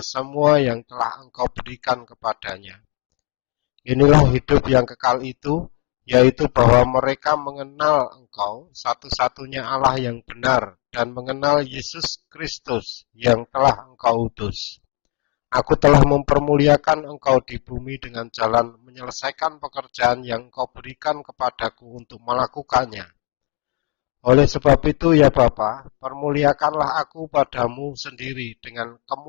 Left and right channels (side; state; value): right; quieter; 30.1 dB